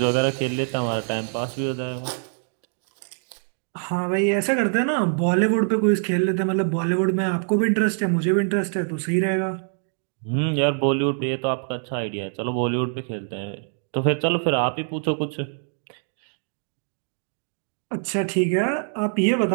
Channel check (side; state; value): left; silent; 61 dB below the other